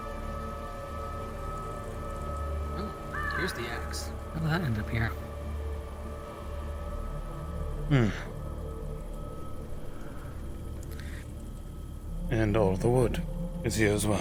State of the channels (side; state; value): both; identical; correlation 1.00